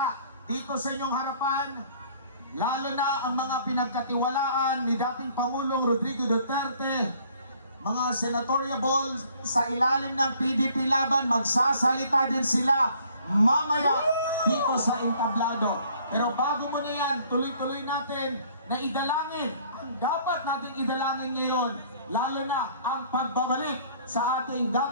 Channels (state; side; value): inverted; both; correlation -0.58